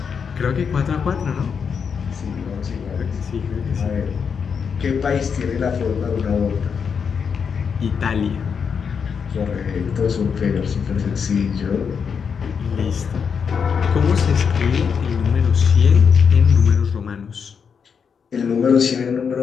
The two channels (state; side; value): quieter; right; 6.4 dB